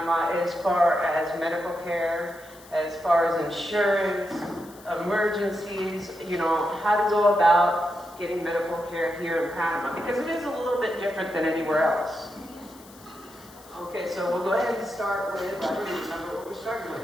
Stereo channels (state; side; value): noise; left; hiss, 23 dB below the sound